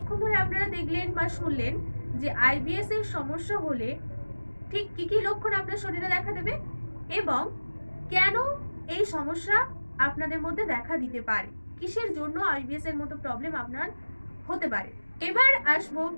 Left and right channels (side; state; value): both; inverted; correlation -1.00